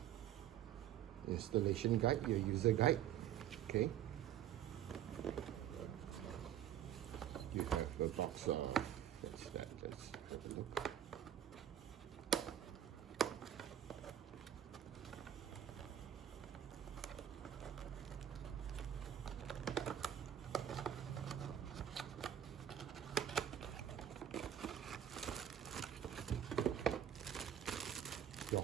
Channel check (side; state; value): left; quieter; 10.4 dB